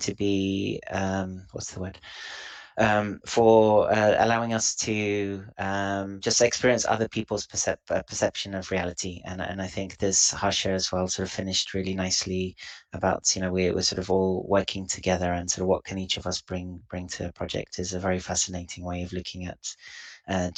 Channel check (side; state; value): both; identical; correlation 1.00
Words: be, what's the word? For allowing us to just experience other people's perception of reality. And I think this Harsha as well sort of finished really nicely about, we're sort of all working together, and sort of what can each of us bring to a project is a very fascinating way of looking at